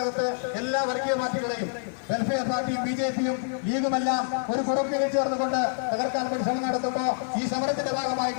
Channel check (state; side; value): silent; right; digital silence